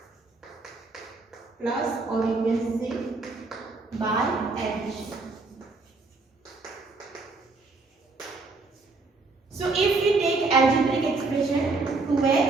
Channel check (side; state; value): left; quieter; 3.7 dB